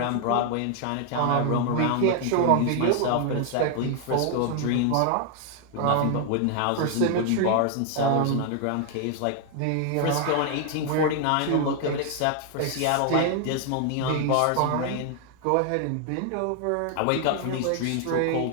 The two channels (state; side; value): different; both; correlation 0.00